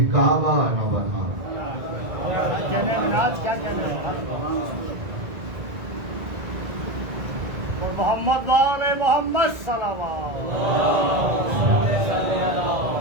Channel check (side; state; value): left; late; 1.9 ms